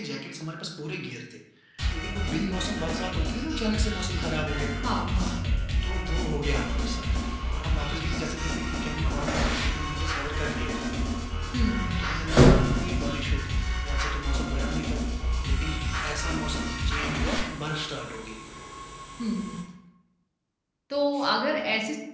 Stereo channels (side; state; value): both; identical; correlation 1.00